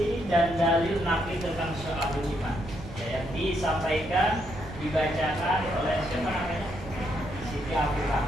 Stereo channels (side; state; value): right; noise; rumble, 13 dB below the sound